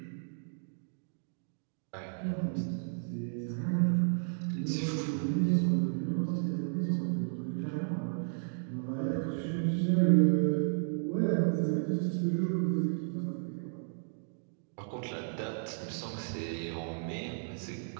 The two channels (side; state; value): left; silent; digital silence